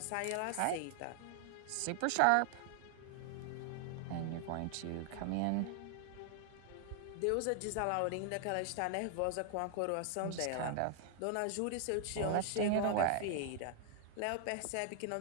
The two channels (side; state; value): both; different; correlation 0.00